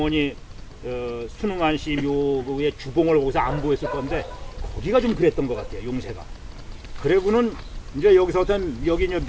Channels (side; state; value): both; identical; correlation 1.00